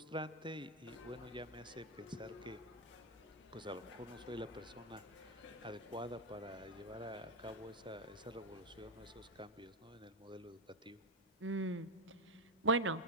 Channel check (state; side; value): normal; both; correlation 0.06